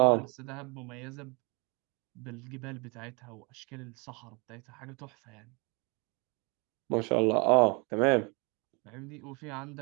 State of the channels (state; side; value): quieter; left; 31.5 dB